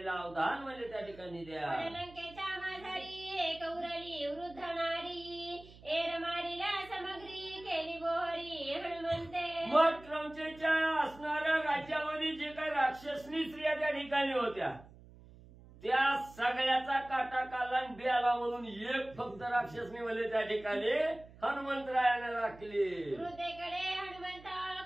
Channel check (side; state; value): right; noise; hum, 21 dB below the sound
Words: अवधान म्हणजे त्या ठिकाणी द्या. लंकेच्या माझारी एक उरली वृद्ध नारी एर मारीला समग्री केली बोहरी हनुमंते. मग क्रमचेच्या असणाऱ्या राज्यामध्ये जे काही राक्षसनी स्त्रिया त्या ठिकाणी होत्या त्या सगळ्याचा काटा काला बियाला म्हणून एक फक्त राक्षसनी म्हणजे त्या ठिकाणी हनुमंतरायाने राखली. हृदयकडे हनुमंत